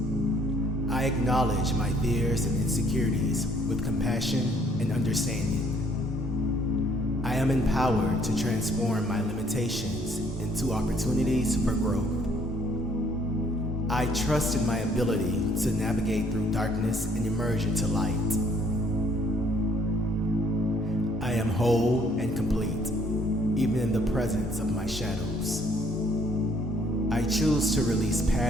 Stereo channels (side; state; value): both; normal; correlation 0.63